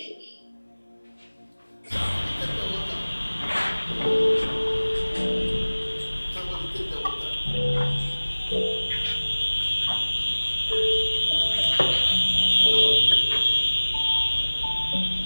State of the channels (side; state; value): both; inverted; correlation -1.00